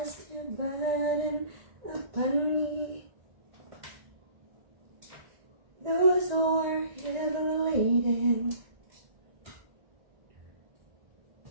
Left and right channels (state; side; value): late; left; 1.9 ms